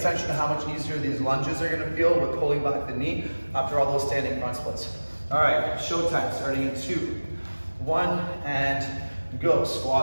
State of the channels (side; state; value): both; inverted; correlation -1.00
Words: to how much easier these lunges are gonna feel with pulling back the knee after all those standing front splits. All right, showtime, starting in 2, 1, and go.